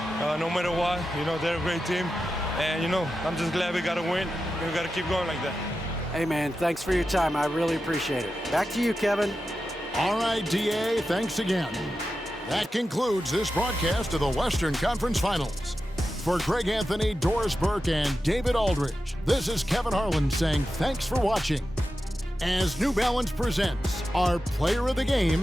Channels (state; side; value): normal; both; correlation 0.91